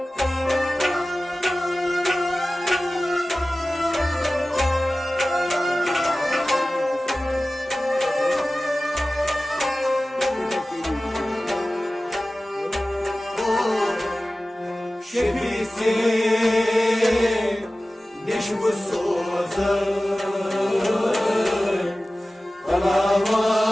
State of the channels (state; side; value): normal; both; correlation 0.97